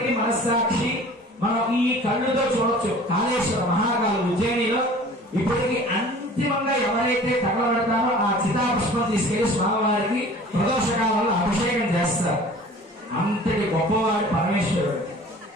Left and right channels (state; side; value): normal; both; correlation 0.46